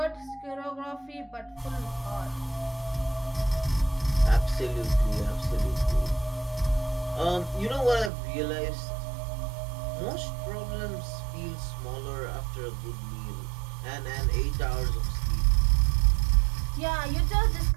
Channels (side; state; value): left; drops out; at 8.1 s